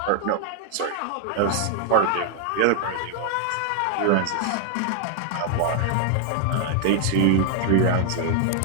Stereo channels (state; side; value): different; both; correlation 0.00